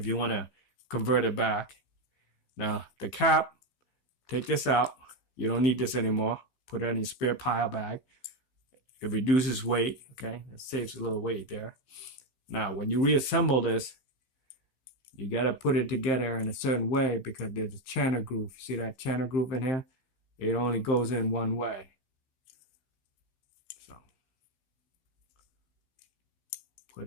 you want to convert it back. Now, the cap, take this out. You don't need this anymore. Put it in your spare pile bag. It reduces weight, okay? It saves a little weight there. Now, when you reassemble this, you got to put it together in a certain way because there's a channel groove. See that channel groove in here? It only goes in one way.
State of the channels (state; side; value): late; right; 15 ms